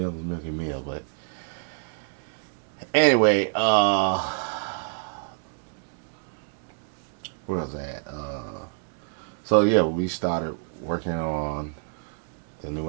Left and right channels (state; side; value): silent; left; 60 dB below the other